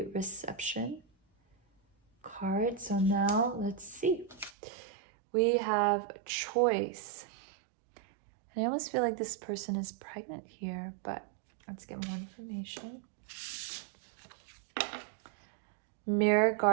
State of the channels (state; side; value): drops out; left; at 4.5 s